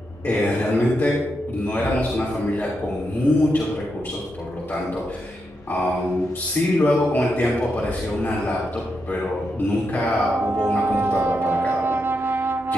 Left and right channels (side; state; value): both; normal; correlation 0.84